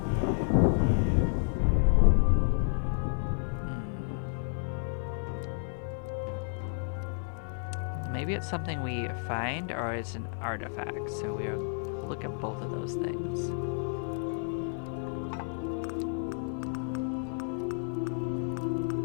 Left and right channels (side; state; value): right; silent; 57 dB below the other